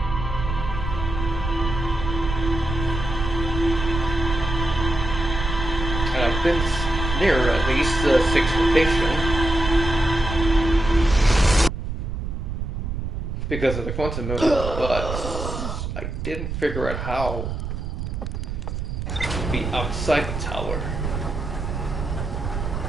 And I've been near at least the 6th location. Because of the quantum movement, but I didn't figure out how to be outside the tower.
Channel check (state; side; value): noise; right; rumble, 4 dB below the sound